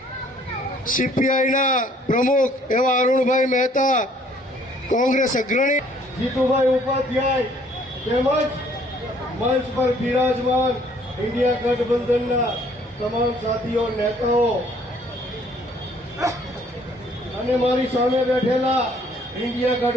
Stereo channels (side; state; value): both; normal; correlation 0.61